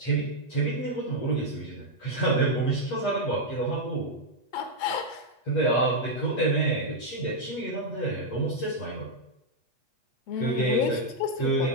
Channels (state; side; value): late; right; 8.3 ms